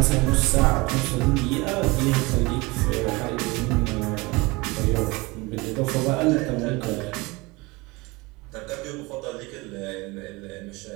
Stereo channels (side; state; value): left; quieter; 24.0 dB